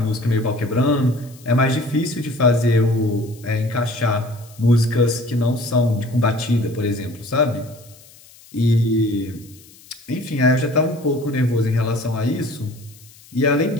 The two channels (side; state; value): left; noise; hiss, 24 dB below the sound